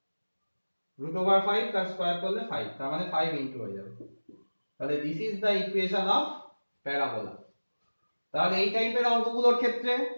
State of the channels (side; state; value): both; inverted; correlation -1.00